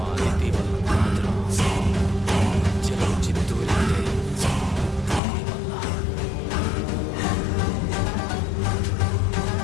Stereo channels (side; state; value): right; drops out; at 5.2 s